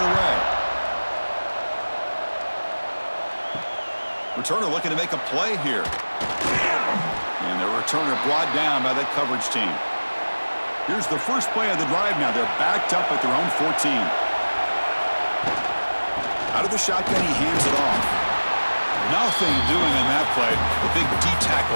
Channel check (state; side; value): inverted; both; correlation -1.00